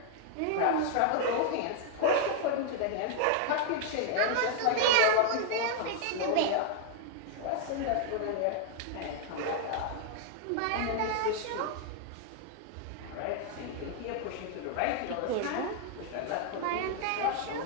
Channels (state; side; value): different; both; correlation 0.00